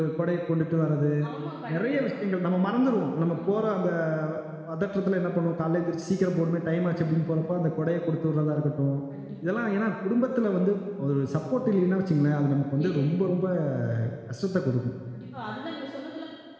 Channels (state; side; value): identical; both; correlation 1.00